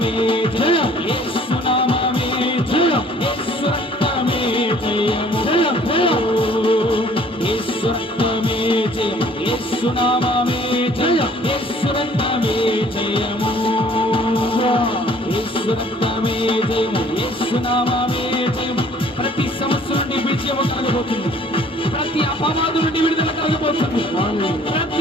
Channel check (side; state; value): both; normal; correlation 0.56